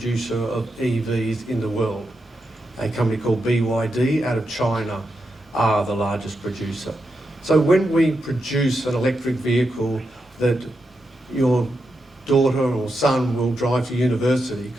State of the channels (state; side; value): normal; both; correlation 0.86